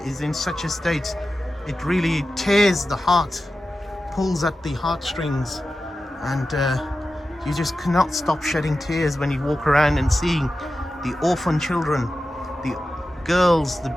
in such a state, it really tears the heart, pulls at the heartstrings, and you just cannot stop shedding tears when you walk around and seeing the orphan children, the girls, the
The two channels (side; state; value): both; normal; correlation 0.93